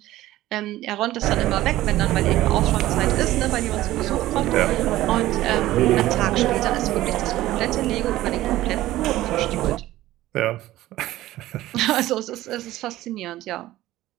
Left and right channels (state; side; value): quieter; left; 15.6 dB